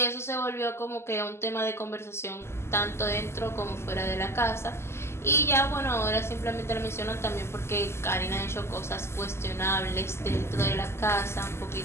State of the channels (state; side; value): late; right; 0.12 ms